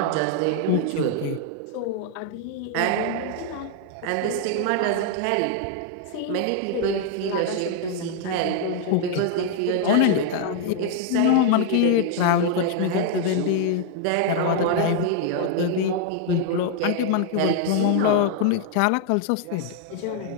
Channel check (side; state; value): both; different; correlation 0.00